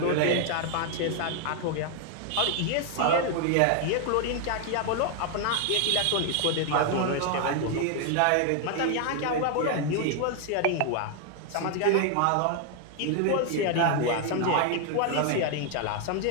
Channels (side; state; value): both; different; correlation 0.00